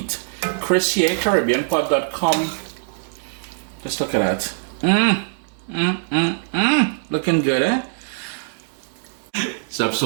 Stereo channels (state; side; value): silent; left; digital silence